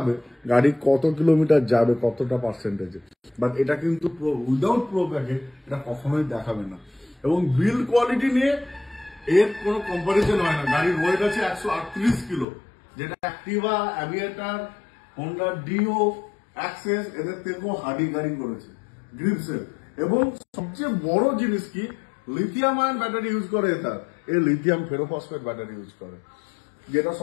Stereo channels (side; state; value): right; drops out; at 12.5 s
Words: গাড়ি কত কিলোমিটার যাবে, কতটা পার্সেন্টেজে। বাট এটা কিন্তু উইদাউট প্রোপ্যাকে এটা কখনোই দেখাবে না। এবং বিল্ড কোয়ালিটি নিয়ে এর কোনো কম্পারিজন হয় না। গাড়ির ওয়েট আছে 138 কিলো, যেটা Activa, Aviator, Honda Dio, Access এদের থেকেও হার্ডি গাড়ি করেছে গ্রিপসের। এবং সবচেয়ে বড় জিনিস কি, লিথিয়াম আয়ন ব্যাটারি ইউজ করে এটা, এর লিথিয়াম ফেরোফসফেট ব্যাটারি ইউজ করে, যেটা